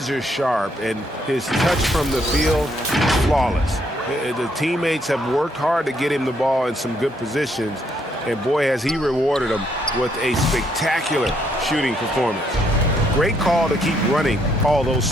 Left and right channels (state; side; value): normal; both; correlation 0.72